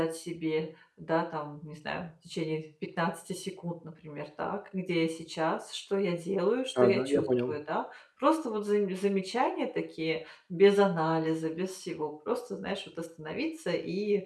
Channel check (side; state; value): both; identical; correlation 1.00